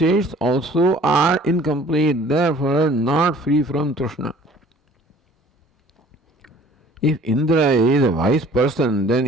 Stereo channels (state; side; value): normal; both; correlation 0.51